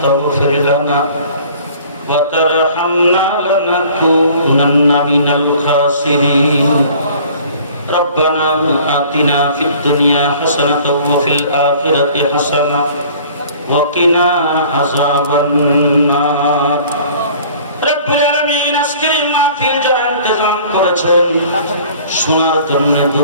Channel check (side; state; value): both; inverted; correlation -0.50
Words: تغفر لنا وترحمنا لنكونن من الخاسرين. ربنا آتنا في الدنيا حسنة وفي الآخرة حسنة وقنا عذاب النار. رب العالمين আজকে মাহফিল যারা ইন্তজাম করেছেন, শোনার জন্য